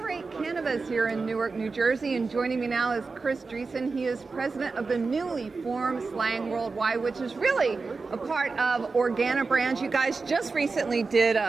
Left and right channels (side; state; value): left; quieter; 4.3 dB